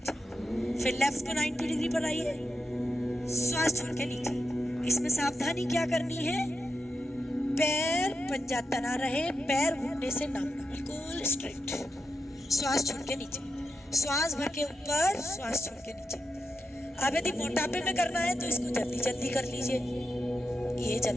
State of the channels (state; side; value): normal; both; correlation 0.88